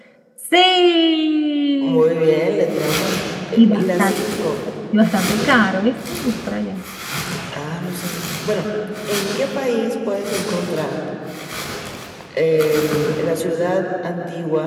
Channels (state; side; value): identical; both; correlation 1.00